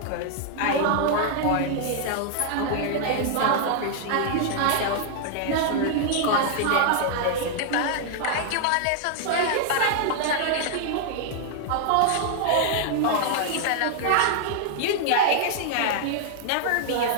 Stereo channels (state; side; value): different; both; correlation 0.00